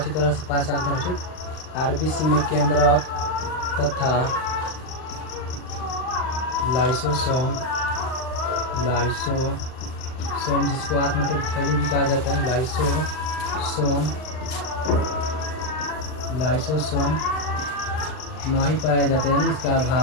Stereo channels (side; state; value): right; late; 39 ms